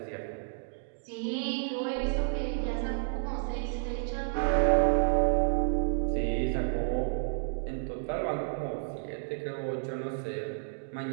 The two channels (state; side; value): silent; left; digital silence